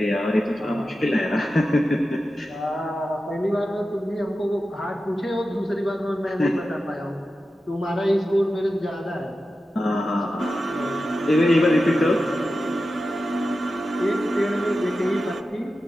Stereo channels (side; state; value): both; normal; correlation 0.92